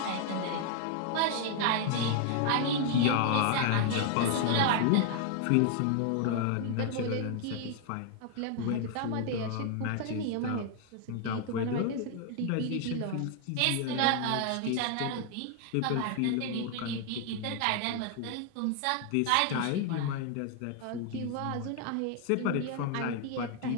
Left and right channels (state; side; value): different; both; correlation 0.00